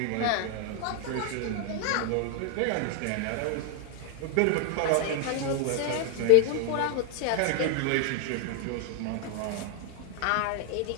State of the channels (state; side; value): different; both; correlation 0.00